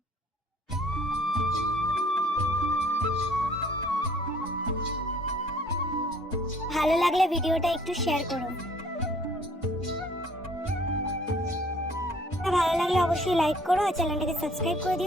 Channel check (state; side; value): normal; both; correlation 0.58